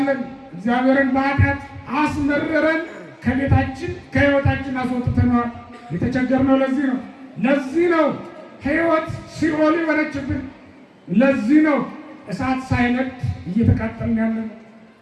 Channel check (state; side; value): identical; both; correlation 1.00